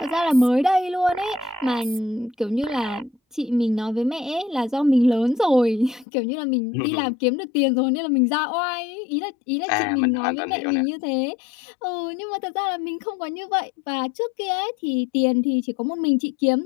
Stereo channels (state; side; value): drops out; right; at 6.1 s